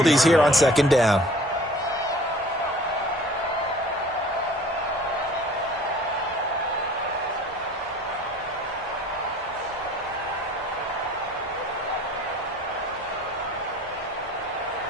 here on 2nd down.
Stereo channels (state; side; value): normal; both; correlation 0.48